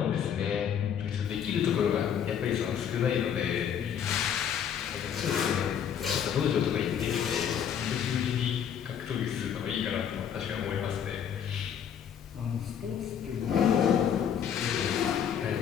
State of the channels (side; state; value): right; quieter; 8.6 dB